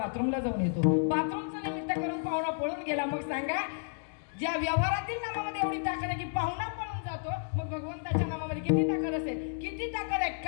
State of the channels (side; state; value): right; silent; digital silence